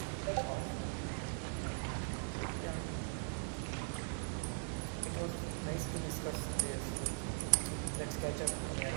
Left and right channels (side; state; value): left; silent; digital silence